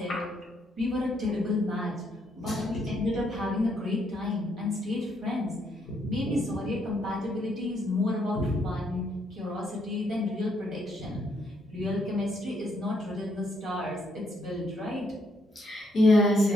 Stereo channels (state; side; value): normal; both; correlation 0.73